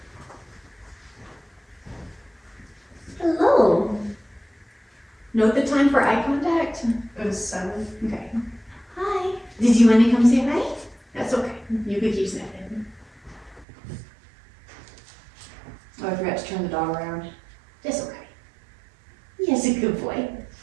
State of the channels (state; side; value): drops out; left; at 13.7 s